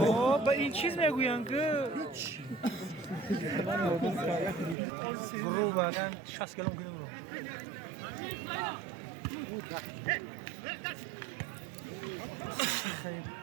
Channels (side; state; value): left; drops out; at 4.8 s